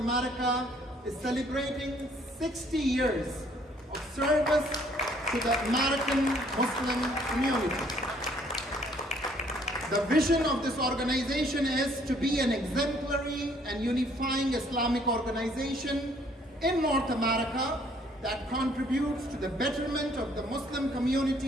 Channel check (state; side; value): normal; both; correlation 0.62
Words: is celebrating 60 years of service to the American Muslim community. The vision of this organization is to be an exemplary and unifying Islamic organization in North America that contributes to the betterment of the Muslim